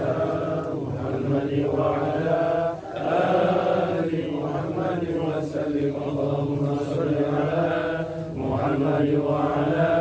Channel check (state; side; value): identical; both; correlation 1.00